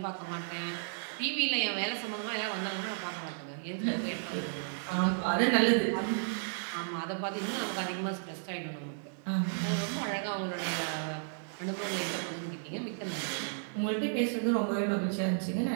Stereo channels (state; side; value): silent; left; digital silence